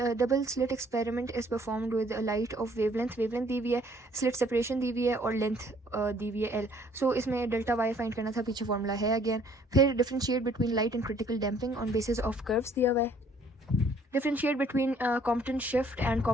slit experiment is performed with light of wavelength दी हुई है, स्लिट सेपरेशन दी हुई है, और लेंथ दी हुई है L। सो इसमें डेल्टा वाई फाइंड करना था, पीछे फॉर्मूला है अगेन। फिर differentiate between light and critical damping on basis of curves दिया हुआ है। Differentiate between Compton shift and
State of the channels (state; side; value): normal; both; correlation 0.60